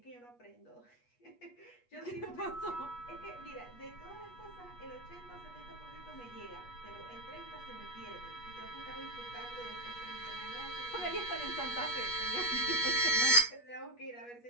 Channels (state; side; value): late; right; 8.3 ms